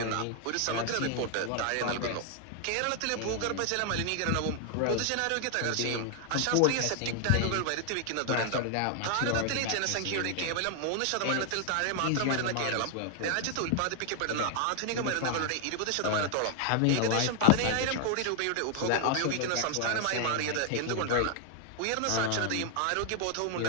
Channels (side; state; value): both; different; correlation 0.00